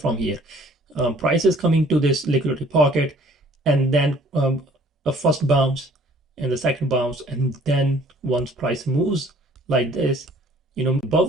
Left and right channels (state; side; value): normal; both; correlation 0.56